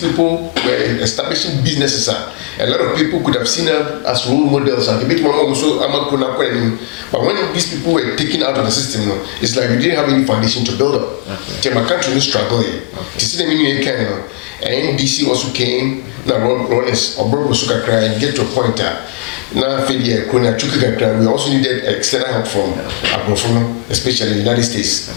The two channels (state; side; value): quieter; right; 29.2 dB